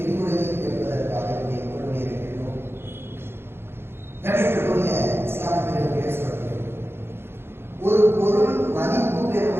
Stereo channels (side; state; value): left; late; 0.11 ms